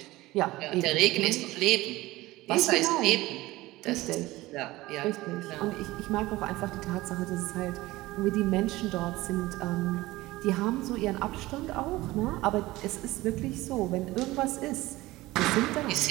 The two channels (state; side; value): quieter; left; 18.8 dB